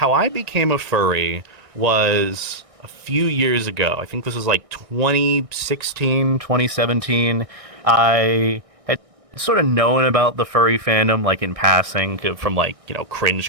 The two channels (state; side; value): late; left; 1.6 ms